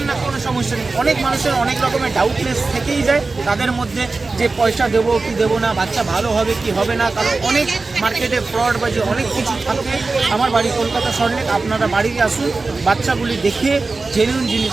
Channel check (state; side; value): quieter; left; 3.7 dB